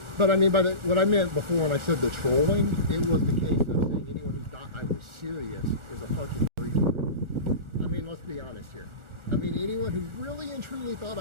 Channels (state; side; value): late; left; 1.4 ms